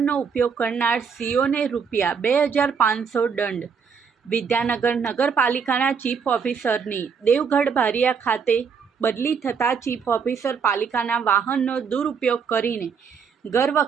ઉપયોગ કરનાર સીઓને ₹2500 દંડ। વિદ્યાનગર નગરપાલિકાના ચીફ ઓફિસરની દેવગઢ બારિયા ખાતે બદલી થતાં ચીફ ઓફિસર પાલિકાના વાહનનો દુરુપયોગ કરીને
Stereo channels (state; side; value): quieter; left; 6.2 dB